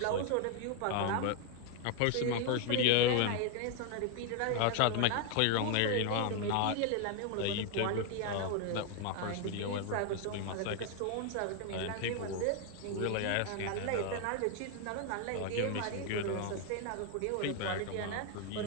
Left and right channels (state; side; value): different; both; correlation 0.01